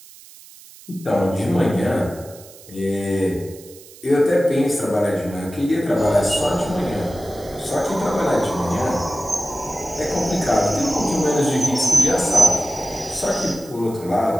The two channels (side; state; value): right; noise; hiss, 21 dB below the sound